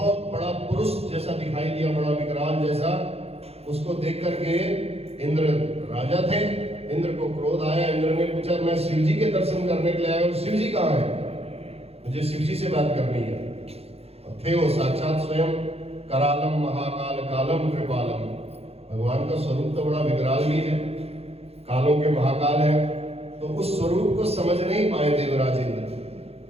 बड़ा पुरुष जैसा दिखाई दिया, बड़ा विकराल जैसा। उसको देख करके इंद्र राजा थे, इंद्र को क्रोध आया। इंद्र ने पूछा, मैं शिव जी के दर्शन करने के लिए आया हूं, शिव जी कहां है? मुझे शिव जी से बात करनी है। और थे वो साक्षात स्वयं करालम महाकाल कालम कृपालम। भगवान का स्वरूप तो बड़ा विकराल भी है, कालों के महाकाल है। तो उस स्वरूप को समझ नहीं पाए देवराज इंद्र।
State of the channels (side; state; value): left; late; 0.29 ms